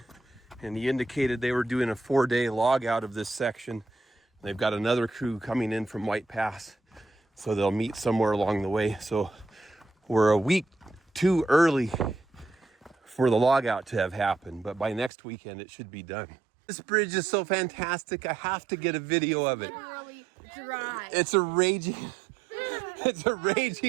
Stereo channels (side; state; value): left; drops out; at 15.1 s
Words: and he indicated they were doing a 4-day log out of this section. They've got another crew coming in from White Pass, so they'll meet somewhere along the way. So we're a week too early for the log out to have happened, but by next weekend it should be done. This bridge is so fantastic. I have to get a video of it. Literally dry. It's a raging